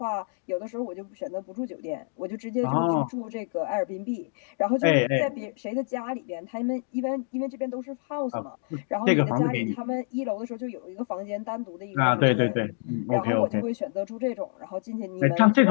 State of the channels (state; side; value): silent; right; 60 dB below the other